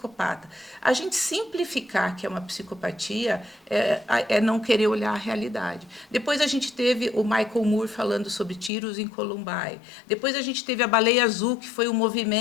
A gente simplificar que é uma psicopatia é não querer olhar a realidade. Depois a gente teve o Michael Moore falando sobre tiros em Columbine. Depois a gente teve a Baleia Azul, que foi um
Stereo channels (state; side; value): drops out; right; at 8.7 s